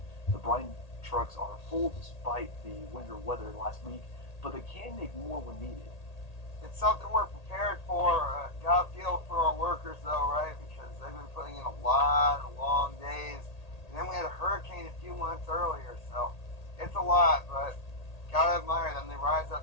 The brine trucks are full despite the winter weather last week, but they can make more when needed. It's something we're prepared for. Gotta feel for our workers though, right? Because they've been putting in a lot of long days. And then we had a hurricane a few months earlier, so it's a lot, but gotta admire them. They rise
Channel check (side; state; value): right; late; 1.8 ms